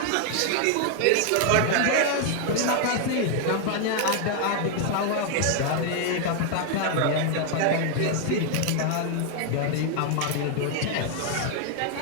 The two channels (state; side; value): different; both; correlation 0.00